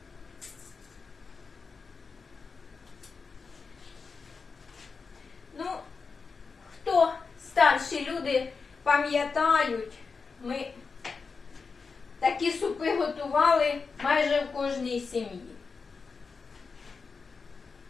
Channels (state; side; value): quieter; right; 4.9 dB